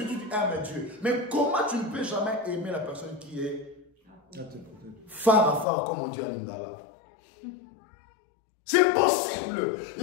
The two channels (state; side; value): drops out; right; at 5.7 s